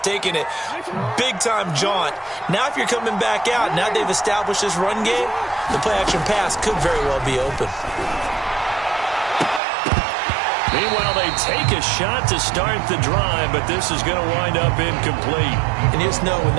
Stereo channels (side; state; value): left; drops out; at 9.6 s